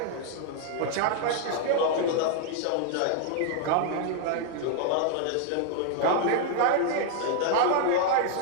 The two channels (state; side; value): different; both; correlation -0.01